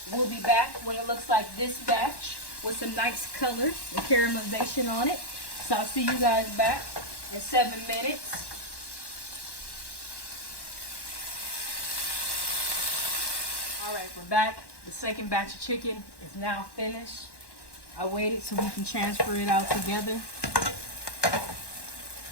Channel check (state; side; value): late; right; 1.1 ms